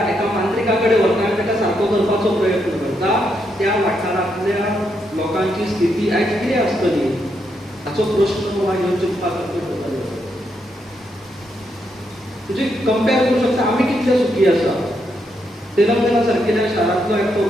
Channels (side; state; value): both; normal; correlation 0.79